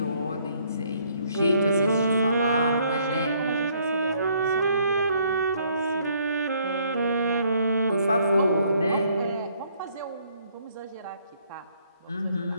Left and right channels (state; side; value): inverted; both; correlation -0.66